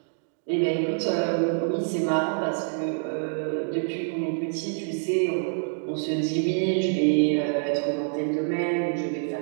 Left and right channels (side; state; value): left; silent; digital silence